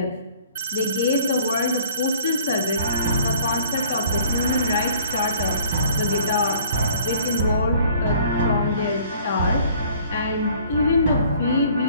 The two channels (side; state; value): both; inverted; correlation -0.55